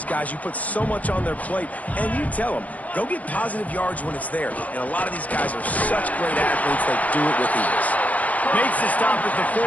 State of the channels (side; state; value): right; late; 0.073 ms